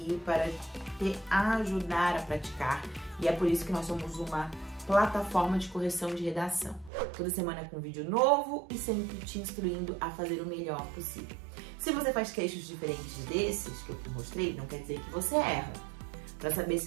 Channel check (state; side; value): drops out; left; at 6.9 s